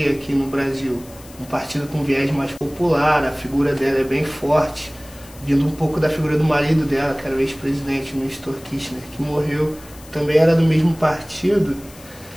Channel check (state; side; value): noise; left; hiss, 21 dB below the sound